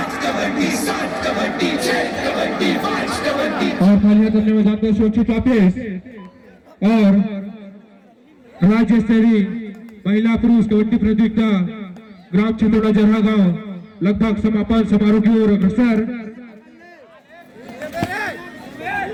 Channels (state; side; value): identical; both; correlation 1.00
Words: और खाली हाथ अपने मैदान पर सुरक्षित वापस और राज्य स्तरीय महिला पुरुष कबड्डी प्रतियोगिता ग्राम चितौड़ा जरहा गांव लगभग समापन समारोह की ओर अग्रसर